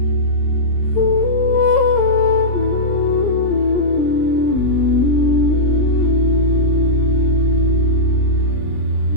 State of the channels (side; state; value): right; late; 20 ms